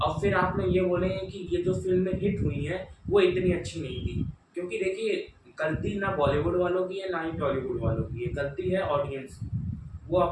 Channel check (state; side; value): identical; both; correlation 1.00